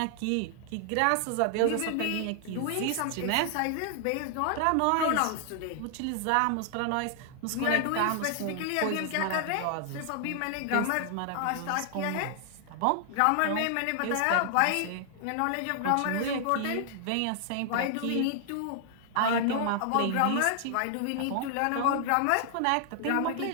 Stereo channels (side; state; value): both; different; correlation 0.00